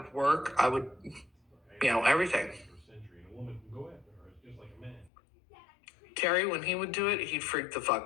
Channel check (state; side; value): drops out; right; at 5.1 s